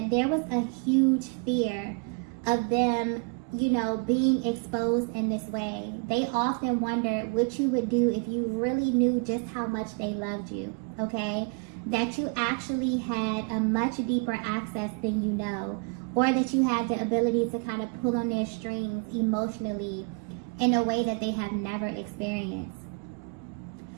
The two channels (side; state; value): left; quieter; 36.8 dB